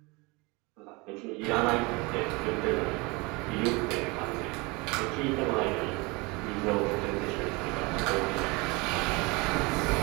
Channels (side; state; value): left; quieter; 26.1 dB